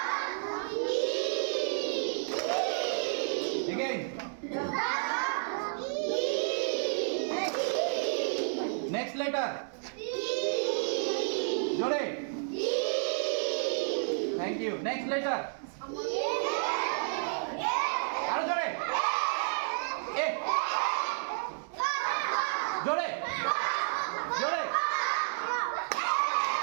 again next letter জোরে thank you next letter আরো জোরে এ জোরে জোরে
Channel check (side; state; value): left; silent; digital silence